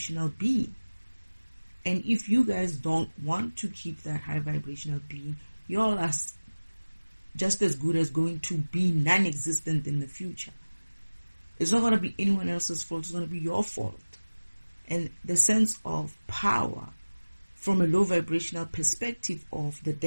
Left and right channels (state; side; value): inverted; both; correlation -1.00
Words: being. And if you guys don't want to keep that high vibrational being, you all are just as good as going to be non-existent in the future. It's not going to be anyone else's fault. It's going to be your fault. And the sense of power from a low vibrational perspective of the